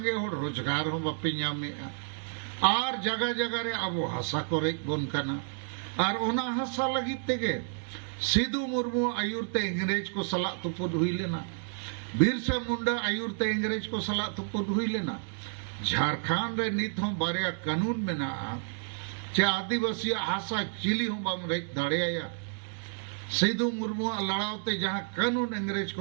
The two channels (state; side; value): silent; left; digital silence